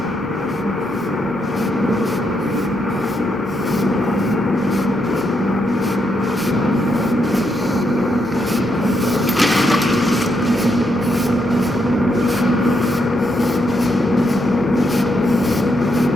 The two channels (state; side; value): normal; both; correlation 0.79